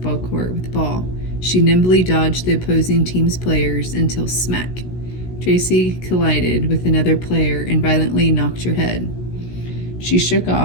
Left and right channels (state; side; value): late; right; 16 ms